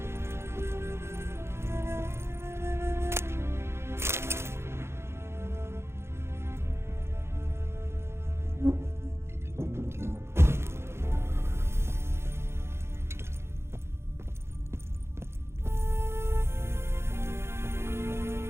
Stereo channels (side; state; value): left; late; 0.12 ms